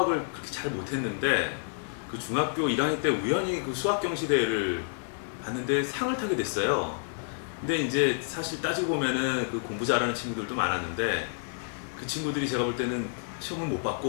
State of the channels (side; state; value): right; silent; 58 dB below the other